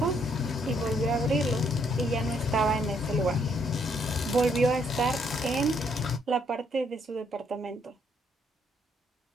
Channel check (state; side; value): normal; both; correlation 0.70